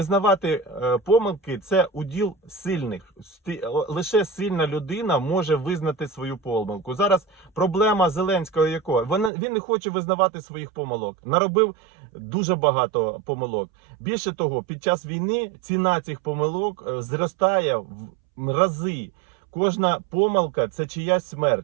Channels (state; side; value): drops out; left; at 9.3 s